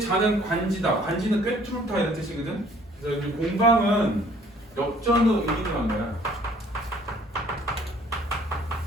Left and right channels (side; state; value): both; normal; correlation 0.57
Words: 관지다. 관지는 꿰뚫다 이런 뜻이거든. 그래서 여기 공방은 역전의 의미를 한 거야.